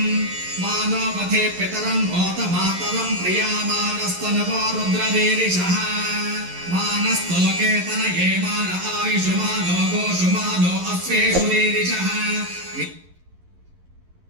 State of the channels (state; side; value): late; left; 11 ms